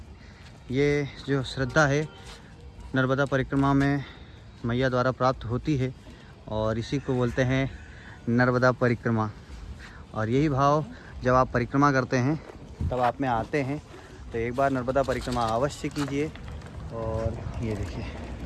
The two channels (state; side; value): identical; both; correlation 1.00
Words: ये जो श्रद्धा है नर्मदा परिक्रमा में मैया द्वारा प्राप्त होती है, और इसी को बोलते हैं नर्मदा परिक्रमा। और यही भाव जब आप परिक्रमा करते हैं तब आप में आते हैं, तो एक बार नर्मदा परिक्रमा अवश्य कीजिए। और ये देखिए